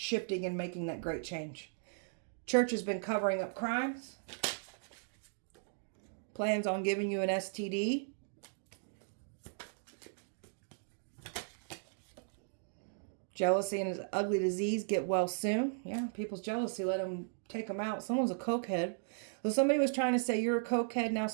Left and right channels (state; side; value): silent; left; digital silence